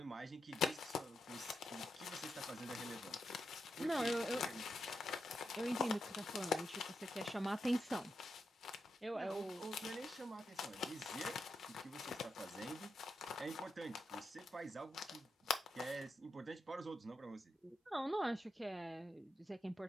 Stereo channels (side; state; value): both; normal; correlation 0.85